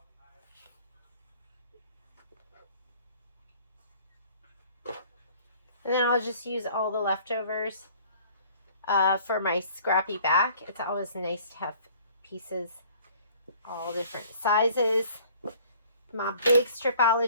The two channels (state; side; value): inverted; both; correlation -0.53